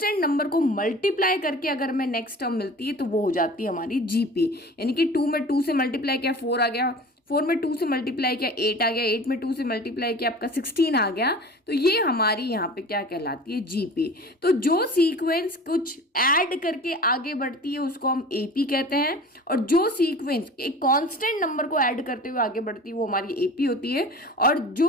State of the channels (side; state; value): both; normal; correlation 0.40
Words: नंबर को मल्टीप्लाई करके अगर हमें नेक्स्ट टर्म मिलती है, तो वो हो जाती है हमारी जीपी। यानी कि 2 में 2 से मल्टीप्लाई किया 4 आ गया, 4 में 2 से मल्टीप्लाई किया 8 आ गया, 8 में 2 से मल्टीप्लाई किया आपका 16 आ गया। तो ये हमारी यहाँ पे क्या कहलाती है? जीपी। तो जो सीक्वेंस कुछ ऐड करके आगे बढ़ती है उसको हम एपी कहते हैं, और जो सीक्वेंस एक कांस्टेंट नंबर को ऐड करते हुए आगे बढ़ती है वो हमारी एपी होती है। और